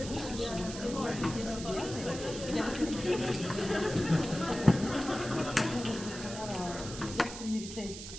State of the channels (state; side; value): noise; right; hiss, 10 dB below the sound